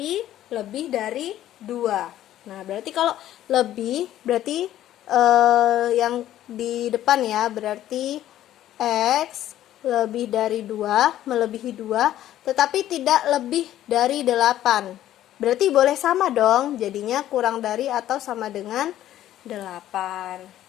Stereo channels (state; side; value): quieter; right; 12.8 dB